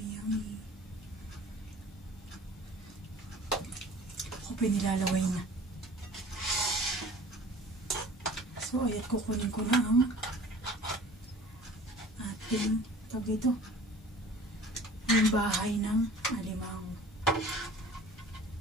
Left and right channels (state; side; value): normal; both; correlation 0.45